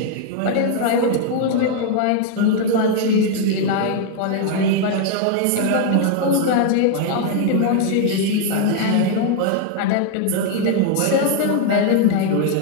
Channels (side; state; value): both; different; correlation 0.00